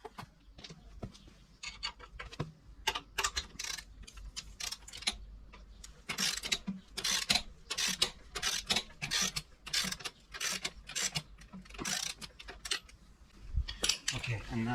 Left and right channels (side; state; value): both; identical; correlation 1.00